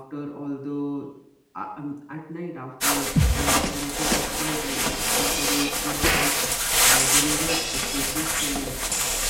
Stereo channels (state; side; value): identical; both; correlation 1.00